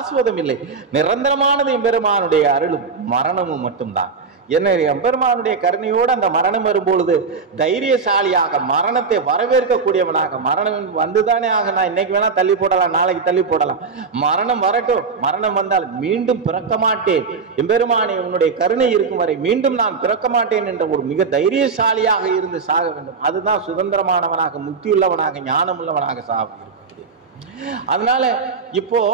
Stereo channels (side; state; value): left; quieter; 4.9 dB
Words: இல்லை. நிரந்தரமானது எம்பெருமானுடைய அருளும் மரணமும் மட்டும்தான். என்ன எம்பெருமானுடைய கருணையோடு அந்த மரணம் வரும்பொழுது தைரியசாலியாக, மரணத்தை வரவேற்கக்கூடியவனாக, மரணம் வந்துதானே ஆக, நான் இன்னைக்கு வேணா தள்ளி போடலாம், நாளைக்கு தள்ளி போடலாம், மரணம் வரட்டும், மரணம் வந்தால் மீண்டும் பிறக்க மாட்டேன், எம்பெருமானே உன்னுடைய கருணை இருக்கும் வரை மீண்டும் நான் பிறக்க மாட்டேன் என்ற ஒரு மிக தைரியசாலியாக இருந்து சாக வேண்டும். அதுதான் சுதந்திரமானவனாக, முக்தியுள்ளவனாக, ஞானம் உள்ளவனாக சாக இருக்கக்கூடிய. அதனால இப்போ